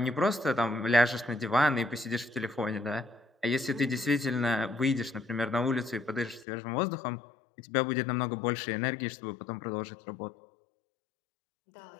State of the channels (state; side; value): drops out; right; at 6.5 s